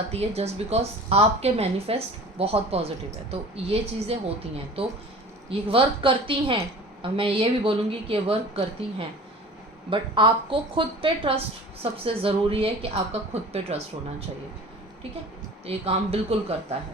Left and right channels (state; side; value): normal; both; correlation 0.41